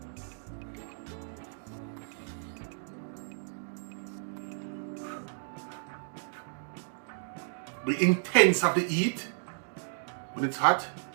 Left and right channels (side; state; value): left; silent; digital silence